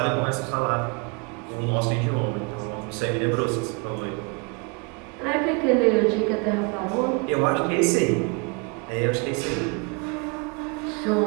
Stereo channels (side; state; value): left; quieter; 31.9 dB